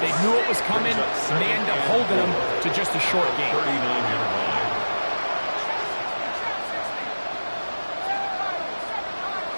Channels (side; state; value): both; inverted; correlation -1.00